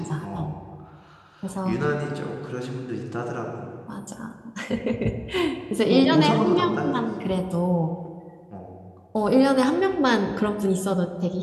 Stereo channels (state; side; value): identical; both; correlation 1.00